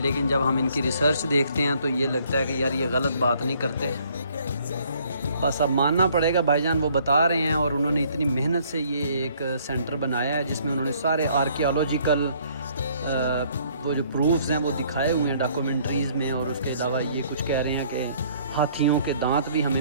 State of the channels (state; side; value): inverted; both; correlation -0.62